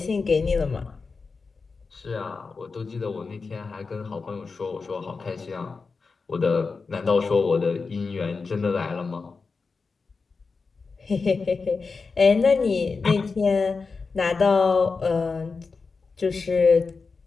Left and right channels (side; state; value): right; quieter; 4.5 dB